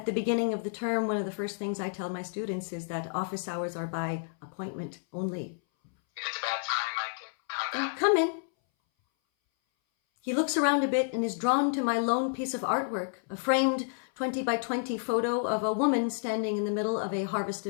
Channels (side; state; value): right; silent; 58 dB below the other